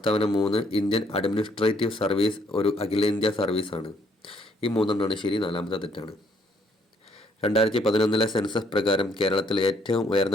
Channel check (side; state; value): both; normal; correlation 0.67